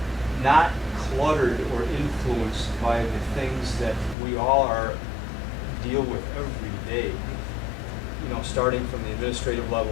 not cluttered or influenced by the things that we all deal with every day. You know, starting from the administrative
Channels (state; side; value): drops out; right; at 4.2 s